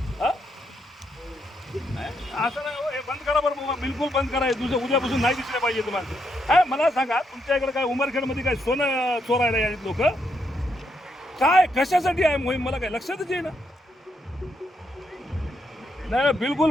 हा असं नाही हो, हे बंद करा बरं, बिलकुल बंद करा. उद्यापासून नाही दिसले पाहिजे तुम्हाला. काय मला सांगा, तुमच्या इकडे काय उमरखेडमध्ये काय सोनं चोरायला यायचे लोक? काय कशासाठी आहे मोहीम मला काय लक्षातच येईना. नाही बिलकुल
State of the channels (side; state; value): both; normal; correlation 0.78